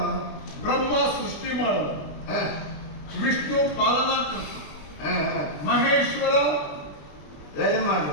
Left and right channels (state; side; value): late; right; 20 ms